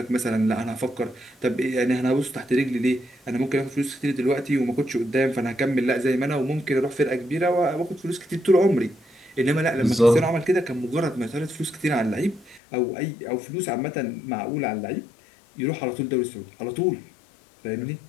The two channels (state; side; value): drops out; right; at 12.6 s